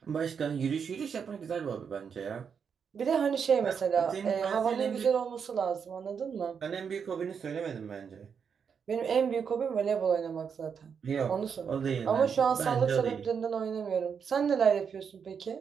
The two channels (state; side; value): quieter; left; 6.7 dB